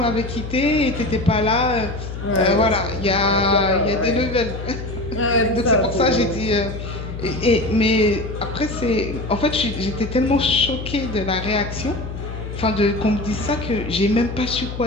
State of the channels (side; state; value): left; noise; hum, 8 dB below the sound